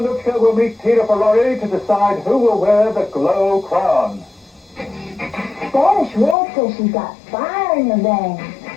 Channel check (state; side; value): drops out; right; at 6.4 s